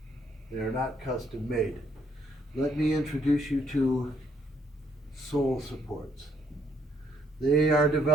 They are not custom made. Let me introduce you to sole supports. They are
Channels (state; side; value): normal; both; correlation 0.71